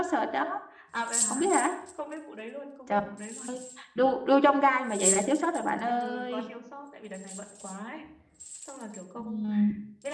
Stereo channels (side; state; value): both; identical; correlation 1.00